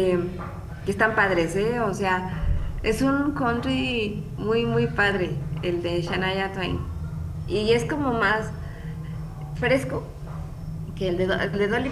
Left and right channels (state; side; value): identical; both; correlation 1.00